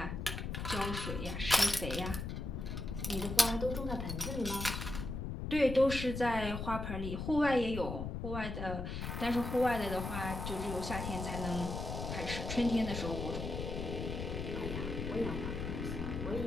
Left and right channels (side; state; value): left; noise; rumble, 4 dB below the sound